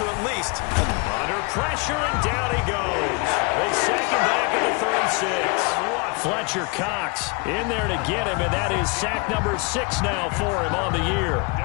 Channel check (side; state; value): right; quieter; 29.9 dB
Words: at least. Under pressure, and down he goes. They sack him back at the 36. Fletcher Cox in there to get him, and that is sack number 6 now for him on the year.